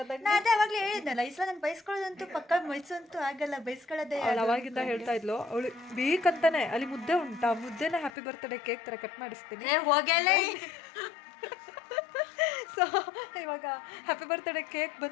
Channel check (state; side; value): drops out; right; at 8.2 s